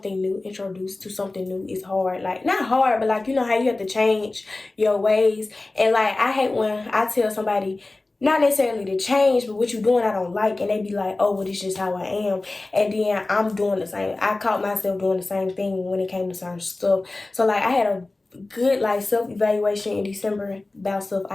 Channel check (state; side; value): quieter; right; 3.1 dB